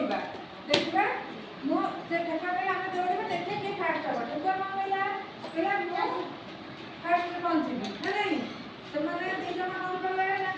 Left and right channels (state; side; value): identical; both; correlation 1.00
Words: देखा मुझे ठेकुआ कहला आम दौड़ा देखिए किए फास्ट हम ठेकुआ कौन कहला कहला फास्ट पहुँची ना नहीं से मैंने दीज कौन कले ना